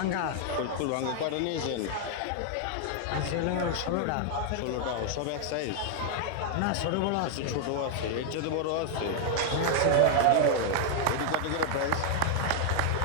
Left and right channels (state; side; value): different; both; correlation 0.00